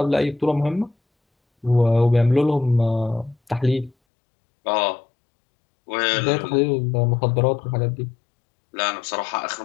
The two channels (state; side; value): drops out; right; at 4.0 s